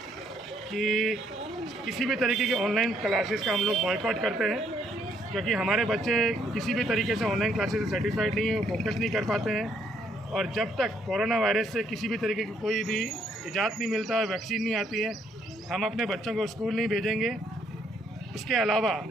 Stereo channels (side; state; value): both; normal; correlation 0.70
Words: कि किसी भी तरीके की ऑनलाइन क्लासेस का हम लोग बॉयकॉट करते हैं, क्योंकि हमारे बच्चे किसी भी तरीके से ऑनलाइन क्लासेस से सेटिस्फाइड नहीं है, फोकस नहीं कर पाते हैं। और जब तक कोरोना वायरस से किसी भी तरीके की कोई भी इजाज़त नहीं मिलता है, वैक्सीन नहीं आती है, हम अपने बच्चों को स्कूल नहीं भेजेंगे। उसके अलावा